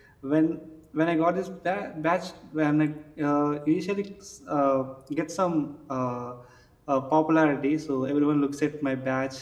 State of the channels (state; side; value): identical; both; correlation 1.00